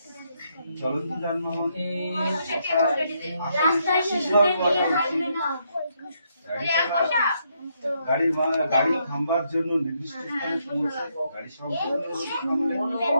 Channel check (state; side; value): inverted; both; correlation -0.76